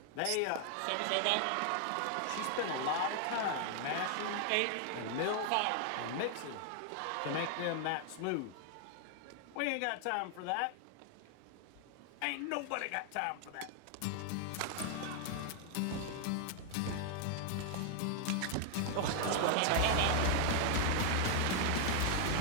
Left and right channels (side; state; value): both; different; correlation 0.00